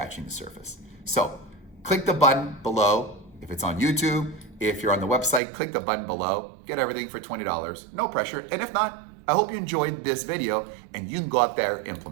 the surface. So click the button below. If it's on YouTube, if you're on the website, click the button below, get everything for $20, no pressure. And if not, I hope you enjoyed this video and you can go out there and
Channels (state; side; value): drops out; left; at 5.4 s